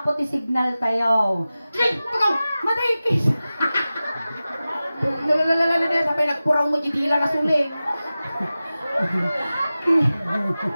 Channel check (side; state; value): both; inverted; correlation -0.96